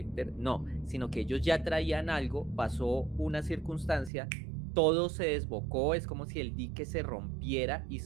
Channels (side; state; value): left; drops out; at 4.1 s